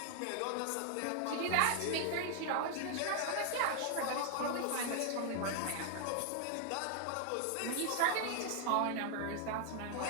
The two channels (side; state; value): both; different; correlation 0.00